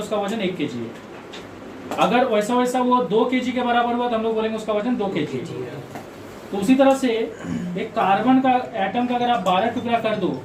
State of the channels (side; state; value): both; identical; correlation 1.00